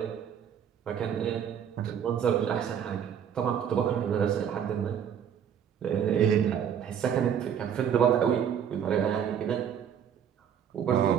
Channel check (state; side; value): quieter; left; 8.5 dB